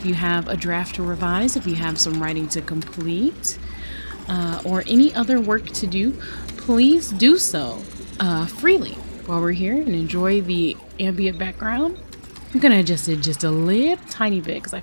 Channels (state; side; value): inverted; both; correlation -1.00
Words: you have a draft to revise, if you have some writing to complete, or any other work to do, please do so freely while we're here and enjoy the ambient background. I'm gonna adjust it just a little tiny bit because I